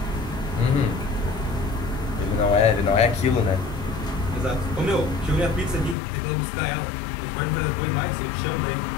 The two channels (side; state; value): right; drops out; at 6.0 s